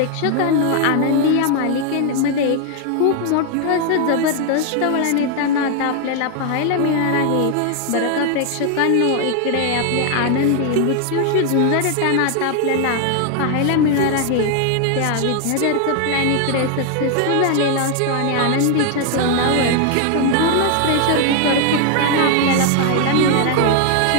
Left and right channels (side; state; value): both; different; correlation 0.00